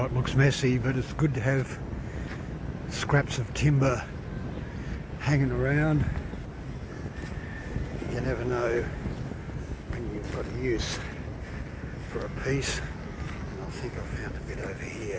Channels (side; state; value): both; identical; correlation 1.00